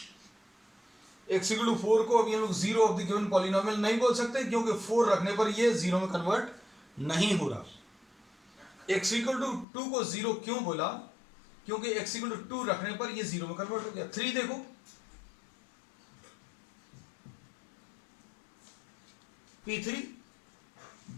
x इक्वल टू 4 को अभी हम लोग zero of the given polynomial नहीं बोल सकते क्योंकि 4 रखने पर ये जीरो में कन्वर्ट नहीं हो रहा. x इक्वल टू 2 को जीरो क्यों बोला, क्योंकि x इक्वल टू 2 रखने पर ये जीरो में कन्वर्ट हो गया. 3 देखो, p3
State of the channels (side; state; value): right; drops out; at 9.7 s